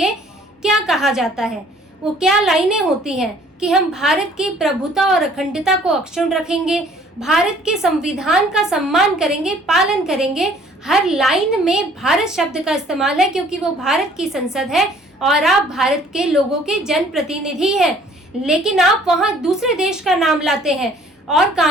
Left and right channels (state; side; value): normal; both; correlation 0.56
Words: क्या कहा जाता है, वो क्या लाइनें होती हैं कि हम भारत की प्रभुता और अखंडता को अक्षुण्ण रखेंगे, भारत के संविधान का सम्मान करेंगे, पालन करेंगे। हर लाइन में भारत शब्द का इस्तेमाल है क्योंकि वो भारत की संसद है और आप भारत के लोगों के जनप्रतिनिधि हैं। लेकिन आप वहां दूसरे देश का नाम लाते हैं और